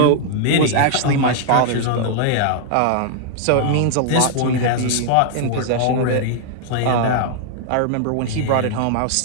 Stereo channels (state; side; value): different; both; correlation 0.00